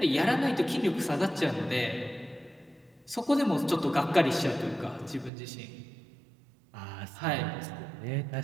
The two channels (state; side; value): drops out; left; at 5.3 s